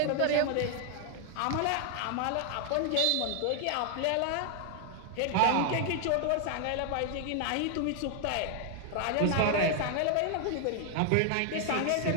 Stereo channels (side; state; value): both; different; correlation 0.00